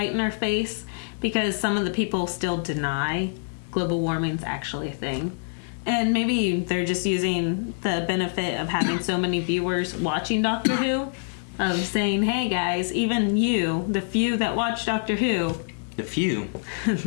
in our face, because some of the people still deny global warming's actually a thing. And maybe they're just using the benefit of having so many viewers watching Doctor Who, of saying, hey guys, even you, the few that watch Doctor Who, the few,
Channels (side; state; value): right; silent; digital silence